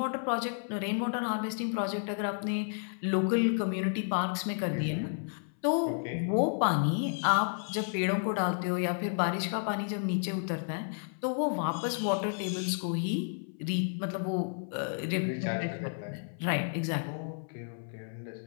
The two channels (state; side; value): silent; right; 57 dB below the other